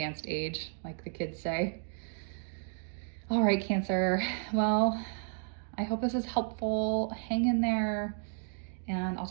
age, like the kids say. All right, Cancer. Well, I hope this is helpful. Hang in there, and I'll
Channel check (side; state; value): left; silent; 55 dB below the other